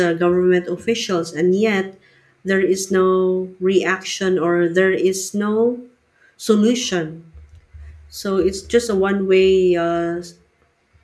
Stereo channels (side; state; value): both; identical; correlation 1.00